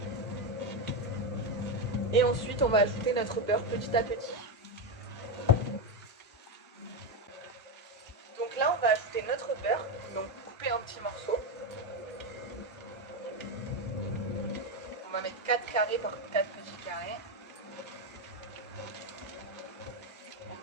Et ensuite on va ajouter notre beurre petit à petit. Donc là on va ajouter notre beurre, donc coupé en petits morceaux. On va mettre 4 carrés par 4 petits carrés. On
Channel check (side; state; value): both; normal; correlation 0.10